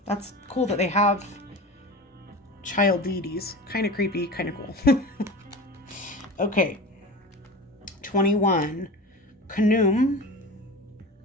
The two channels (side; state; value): both; normal; correlation 0.32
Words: That's cool that they have child deities. Kind of creepy, kind of cool. Okay. 21. Kanum,